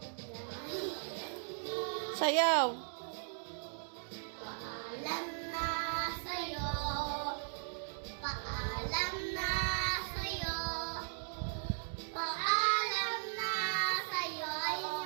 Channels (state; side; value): silent; left; digital silence